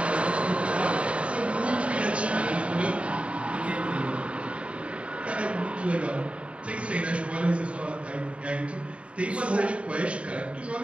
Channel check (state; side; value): late; left; 0.061 ms